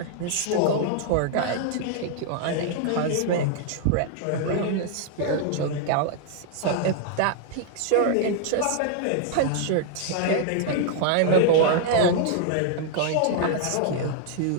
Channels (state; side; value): different; both; correlation 0.00